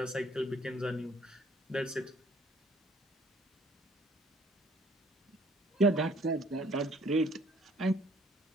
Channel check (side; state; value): both; normal; correlation 0.59